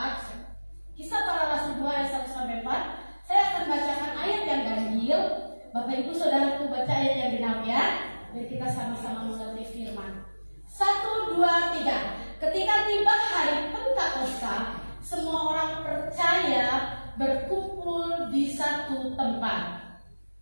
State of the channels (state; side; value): inverted; both; correlation -1.00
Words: Kisah Para Rasul 2 ayat 1 sampai 4. Saya akan bacakan ayat yang ganjil. Bapak Ibu Saudaraku baca ayat yang genap, ya. Biar kita sama-sama mengerti firman. 1, 2, 3. Ketika tiba hari Pentakosta, semua orang percaya berkumpul di satu tempat.